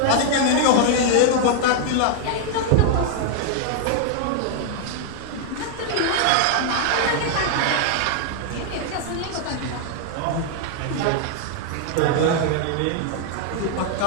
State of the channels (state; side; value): different; both; correlation 0.00